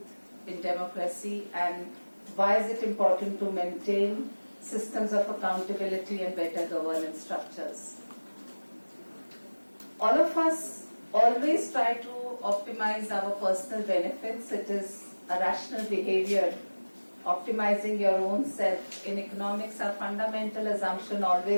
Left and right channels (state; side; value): inverted; both; correlation -1.00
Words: in democracy and why is it important to maintain systems of accountability and better governance structures. All of us always try to optimize our personal benefits. It is a rational behavior, optimizing your own self. In economics, our fundamental assumption